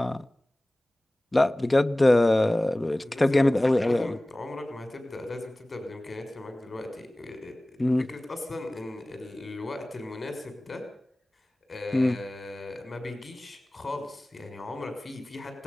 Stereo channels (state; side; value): normal; both; correlation 0.98